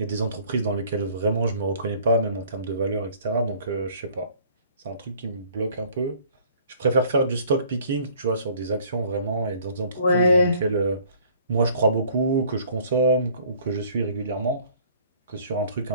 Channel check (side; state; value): both; inverted; correlation -0.55